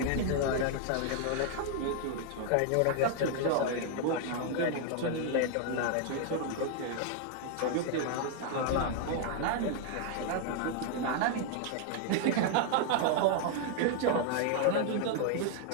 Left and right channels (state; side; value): different; both; correlation 0.00